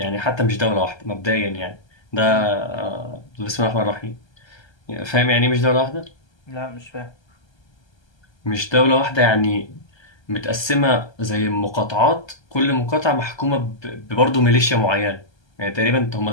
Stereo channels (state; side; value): late; right; 1.3 ms